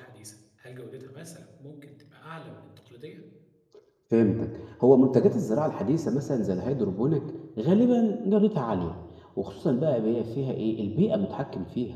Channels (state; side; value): identical; both; correlation 1.00